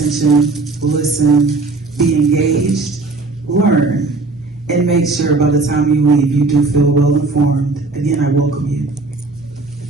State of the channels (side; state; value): left; quieter; 3.5 dB